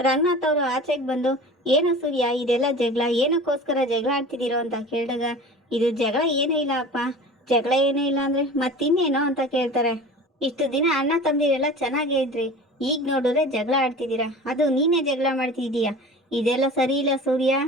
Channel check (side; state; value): both; normal; correlation 0.38